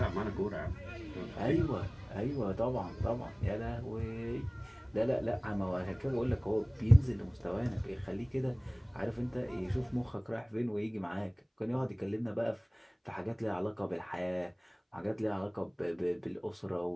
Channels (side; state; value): both; identical; correlation 1.00